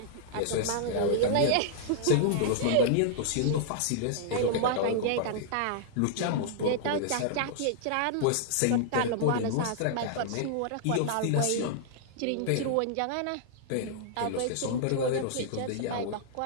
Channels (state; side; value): different; both; correlation -0.01